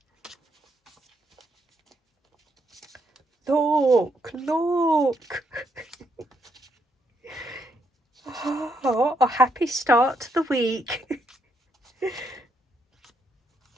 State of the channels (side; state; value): both; normal; correlation 0.76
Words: Look. Oh, a happy start to the week.